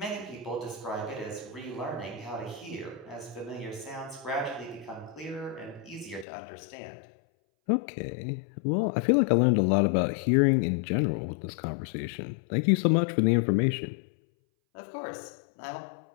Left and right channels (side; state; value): right; drops out; at 6.2 s